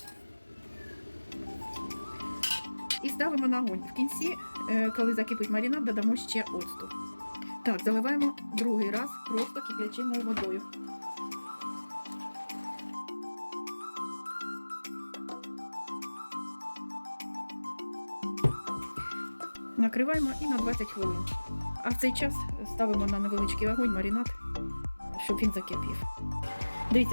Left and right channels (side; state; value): both; inverted; correlation -1.00